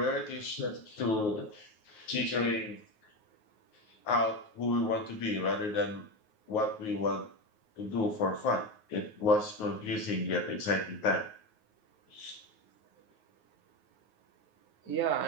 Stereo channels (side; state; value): right; late; 9.4 ms